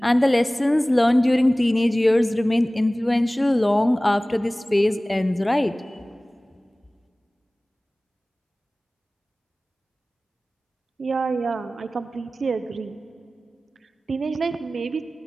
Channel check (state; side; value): normal; both; correlation 0.98